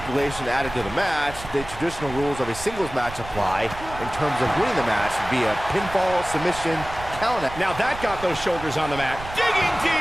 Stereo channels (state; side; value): noise; right; rumble, 13 dB below the sound